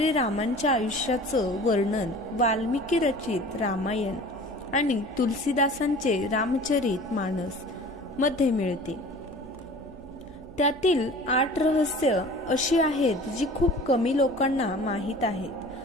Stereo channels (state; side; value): noise; right; hum, 21 dB below the sound